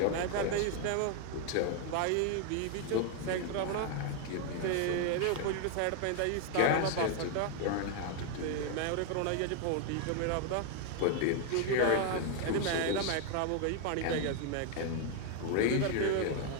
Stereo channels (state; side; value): different; both; correlation 0.00